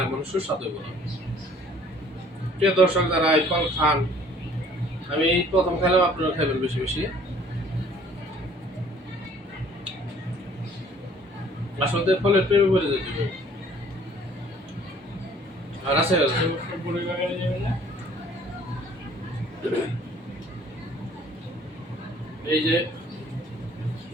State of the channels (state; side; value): normal; both; correlation 0.55